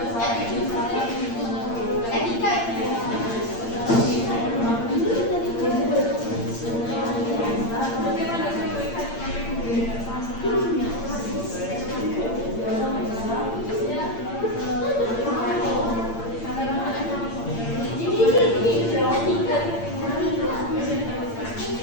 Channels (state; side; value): late; right; 8.7 ms